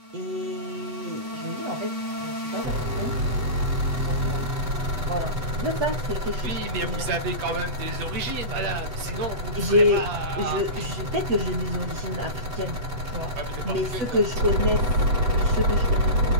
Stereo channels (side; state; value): left; late; 8.1 ms